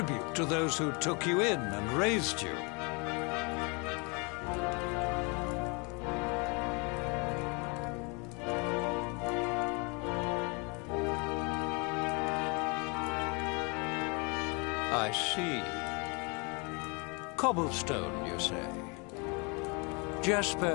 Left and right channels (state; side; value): quieter; right; 31.2 dB